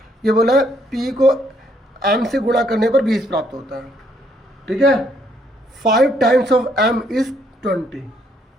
ये बोला है P को M से गुणा करने पर 20 प्राप्त होता है। ठीक है, 5 टाइम्स ऑफ M इज 20।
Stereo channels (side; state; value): both; normal; correlation 0.70